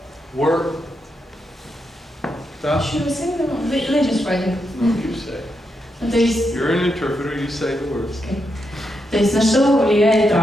work. Stuff? Should we say them? Let's just write it. No, you say. То есть, You're an interpreter, you say the words. okay. То есть на что влияет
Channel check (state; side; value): normal; both; correlation 0.83